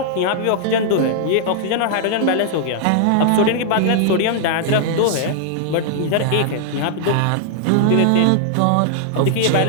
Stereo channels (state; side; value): different; both; correlation -0.01